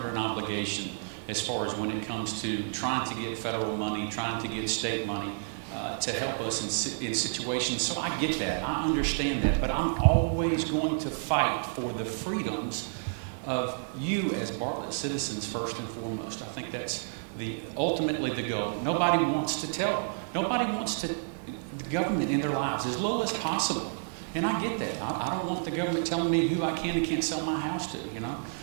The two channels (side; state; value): left; silent; digital silence